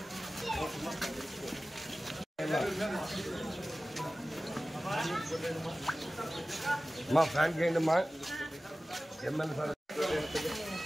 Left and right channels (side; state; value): both; normal; correlation 0.96